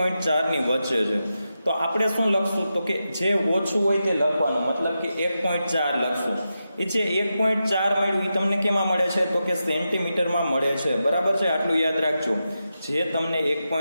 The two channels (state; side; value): inverted; both; correlation -0.89